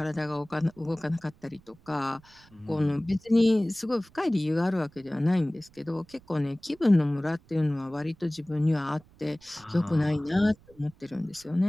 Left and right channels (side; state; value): right; noise; rumble, 27 dB below the sound